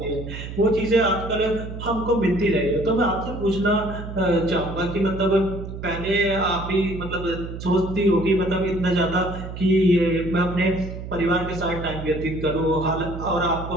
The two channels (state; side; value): noise; right; hum, 9 dB below the sound